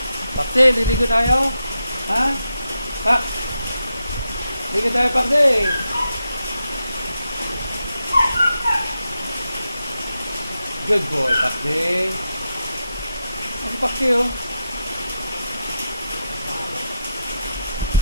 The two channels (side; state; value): both; inverted; correlation -0.86